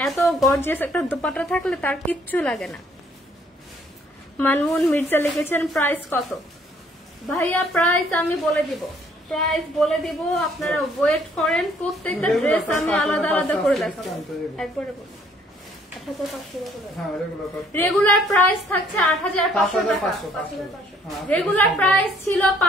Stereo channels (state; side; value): normal; both; correlation 0.63